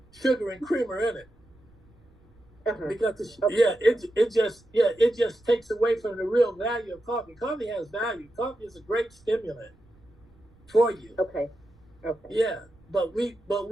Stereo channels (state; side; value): noise; right; rumble, 29 dB below the sound